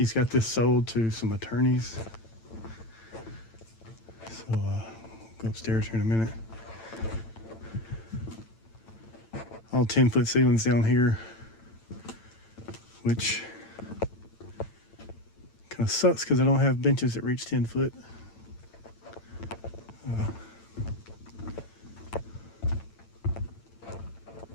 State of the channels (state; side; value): late; right; 8.9 ms